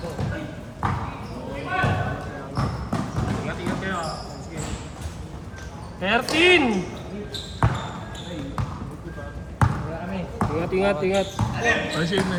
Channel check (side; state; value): both; identical; correlation 1.00